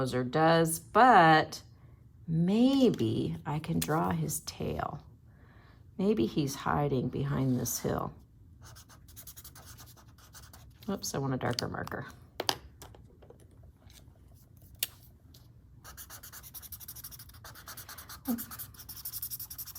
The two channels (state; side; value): identical; both; correlation 1.00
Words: does, but maybe I can draw his tail. Maybe he's hiding behind this hill. Oops, I want a darker marker.